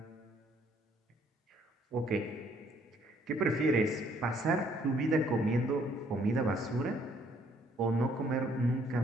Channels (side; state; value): both; normal; correlation 0.65